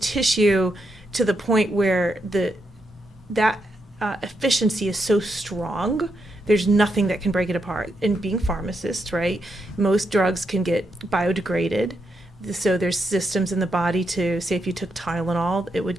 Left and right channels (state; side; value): normal; both; correlation 0.82